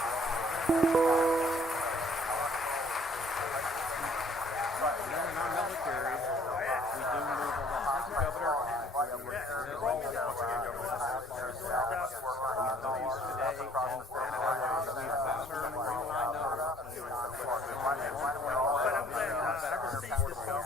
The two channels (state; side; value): normal; both; correlation 0.58